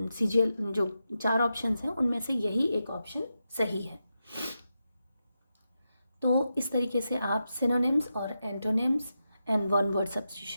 सीजीएल जो 4 ऑप्शंस हैं उनमें से यही एक ऑप्शन सही है। तो इस तरीके से आप सिनोनिम्स और antonyms and one word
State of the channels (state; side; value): inverted; both; correlation -0.88